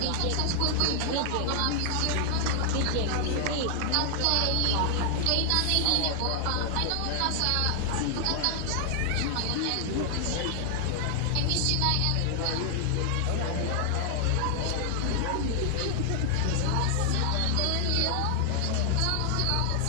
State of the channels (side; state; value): both; different; correlation 0.00